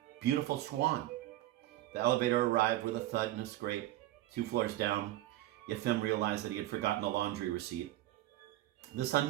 beautiful swan? The elevator arrived with a thud and a scrape. 2 floors down, Yefim realized that he had forgotten the laundry receipt. This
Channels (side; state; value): left; quieter; 15.4 dB